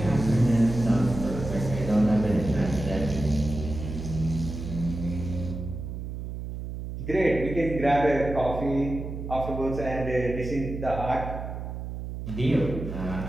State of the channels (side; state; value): right; noise; hum, 7 dB below the sound